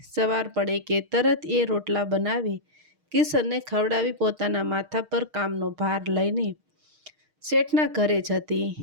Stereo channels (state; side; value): late; left; 6.5 ms